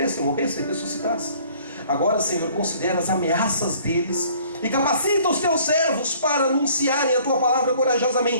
morresse e ressuscitasse. Agora, Senhor, considera as ameaças deles e capacita os teus servos para anunciarem a tua palavra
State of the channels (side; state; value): both; inverted; correlation -0.55